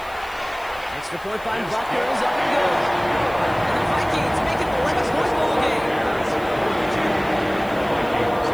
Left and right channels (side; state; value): left; noise; hiss, 23 dB below the sound